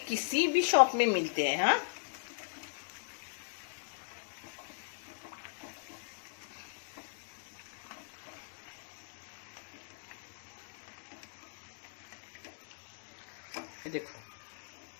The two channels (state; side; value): silent; right; digital silence